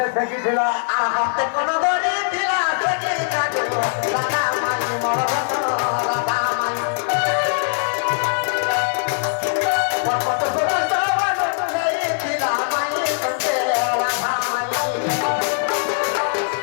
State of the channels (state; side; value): silent; right; digital silence